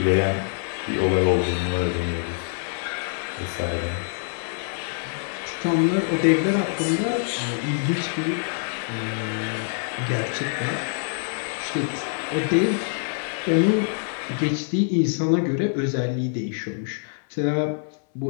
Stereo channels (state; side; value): silent; right; 60 dB below the other